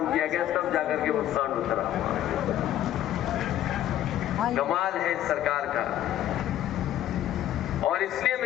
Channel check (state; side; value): quieter; right; 12.2 dB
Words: किया गया, तब जाकर के वो सांड उतरा। कमाल है इस सरकार का। और इसलिए